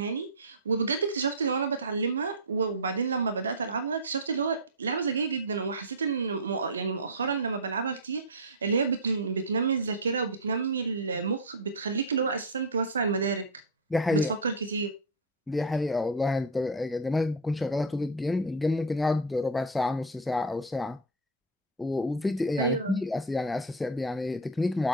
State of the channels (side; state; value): both; normal; correlation 0.04